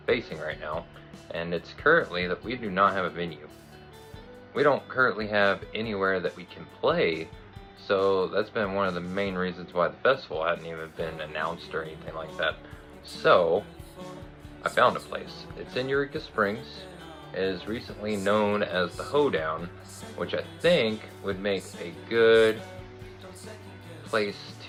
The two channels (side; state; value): both; identical; correlation 1.00